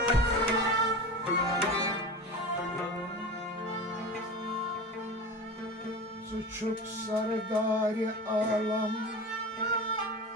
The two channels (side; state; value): both; normal; correlation 0.30